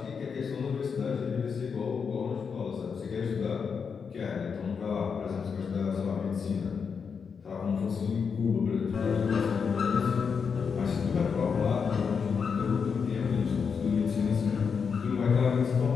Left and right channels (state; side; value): quieter; right; 6.1 dB